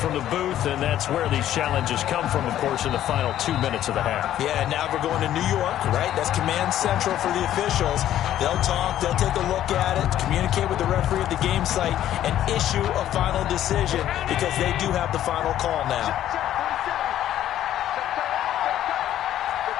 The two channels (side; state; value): right; quieter; 12.0 dB